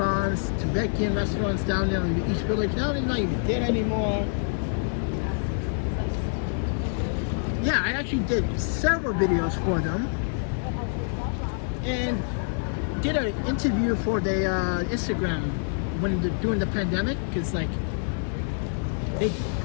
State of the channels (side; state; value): right; silent; digital silence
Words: Tibetan restaurants down there in the East Village. Now they're not even there anymore. Yeah, I actually did several videos for them. And did an interview for the Instagram during the pandemic, because like